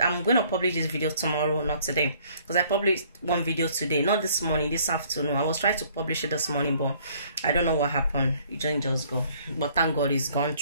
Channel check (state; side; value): inverted; both; correlation -0.59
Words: I'm going to publish this video tomorrow, not today, because I published one video today, not this morning, this afternoon. I was trying to publish it this morning, but I don't know what happened. It didn't just go, but thank God it's gone